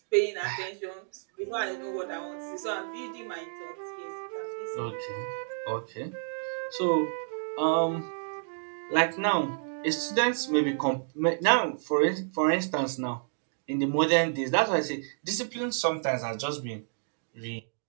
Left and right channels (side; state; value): left; silent; digital silence